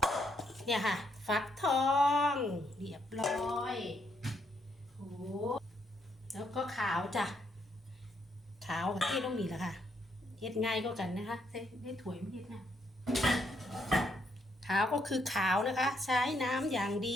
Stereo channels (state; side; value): normal; both; correlation 0.75